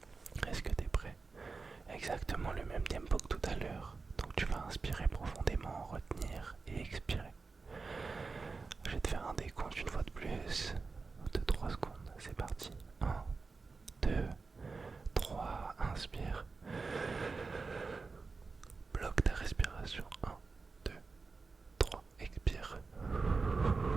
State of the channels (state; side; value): quieter; left; 4.2 dB